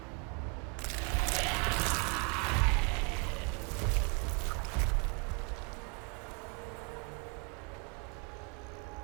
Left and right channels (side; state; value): left; quieter; 33.7 dB